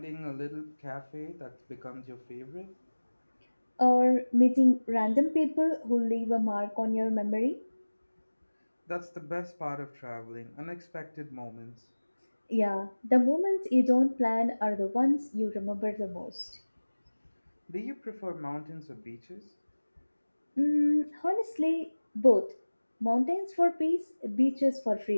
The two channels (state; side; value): inverted; both; correlation -1.00